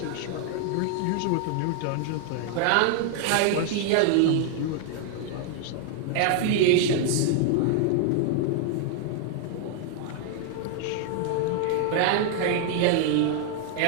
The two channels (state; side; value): different; both; correlation 0.00